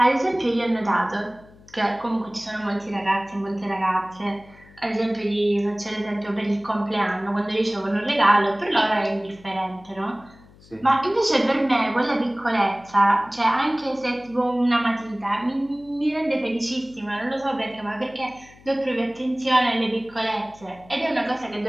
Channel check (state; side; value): noise; left; hum, 25 dB below the sound